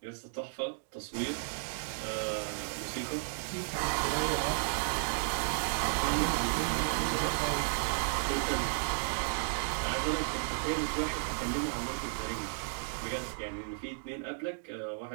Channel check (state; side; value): silent; left; digital silence